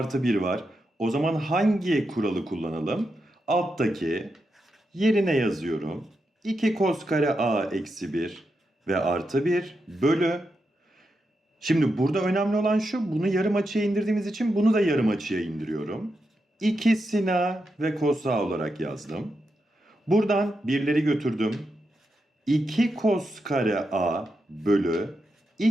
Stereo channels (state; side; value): normal; both; correlation 0.86